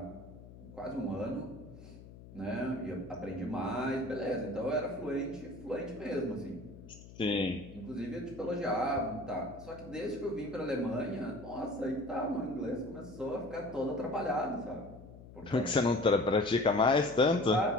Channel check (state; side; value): noise; left; hum, 17 dB below the sound